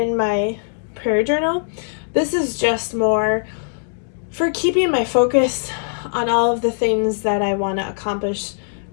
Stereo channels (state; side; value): silent; right; 65 dB below the other